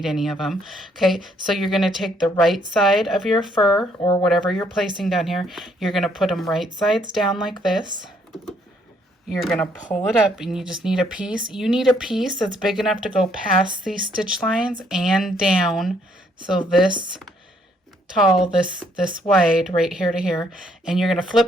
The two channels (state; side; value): normal; both; correlation 0.68